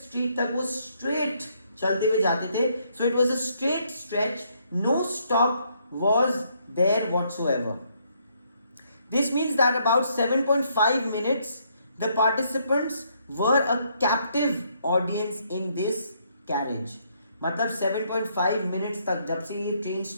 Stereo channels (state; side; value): inverted; both; correlation -0.71